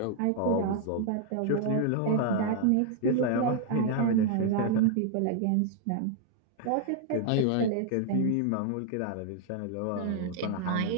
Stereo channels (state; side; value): different; both; correlation -0.01